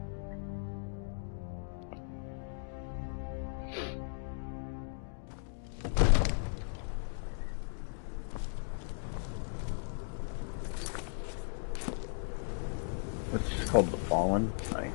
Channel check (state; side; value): silent; right; digital silence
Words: It's called the Fallen. Nice.